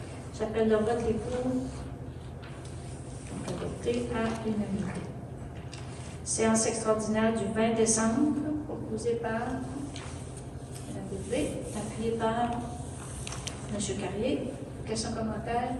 J'appelle le vote. Les pour. Donc adopté à l'unanimité. Séance extraordinaire du 20 décembre, proposée par Mme Bérubé, appuyée par M. Carrier. Questions, commentaires?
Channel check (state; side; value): identical; both; correlation 1.00